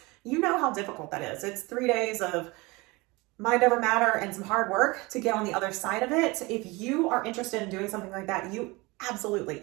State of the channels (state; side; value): quieter; left; 24.1 dB